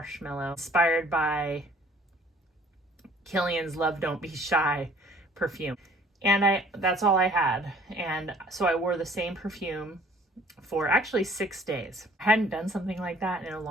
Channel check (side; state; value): both; normal; correlation 0.55